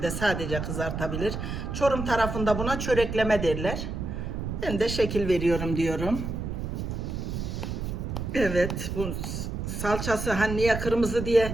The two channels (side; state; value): right; noise; rumble, 4 dB below the sound